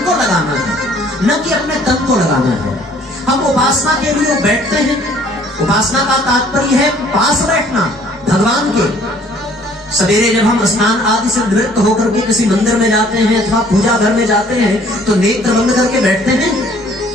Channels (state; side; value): normal; both; correlation 0.57